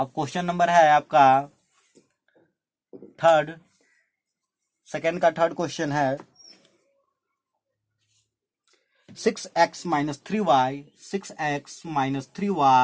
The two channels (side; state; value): both; identical; correlation 1.00